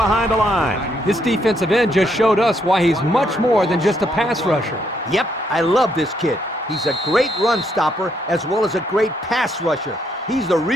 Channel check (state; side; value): normal; both; correlation 0.74